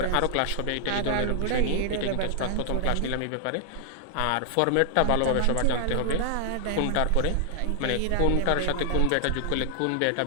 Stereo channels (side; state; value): both; different; correlation -0.01